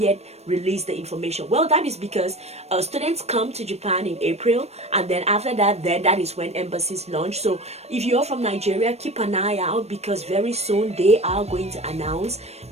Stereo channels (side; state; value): left; late; 0.31 ms